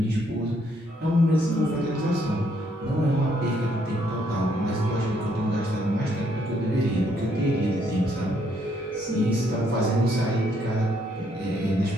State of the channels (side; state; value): both; normal; correlation 0.70